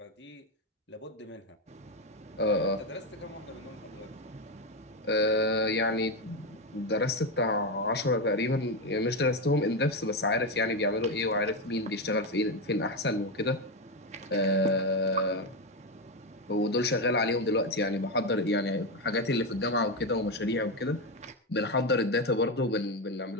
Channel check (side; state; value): both; normal; correlation 0.10